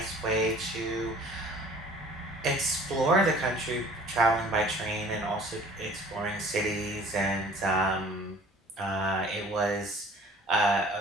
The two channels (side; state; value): both; normal; correlation 0.50